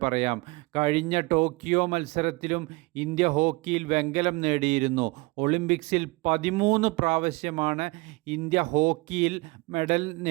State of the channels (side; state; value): left; quieter; 24.9 dB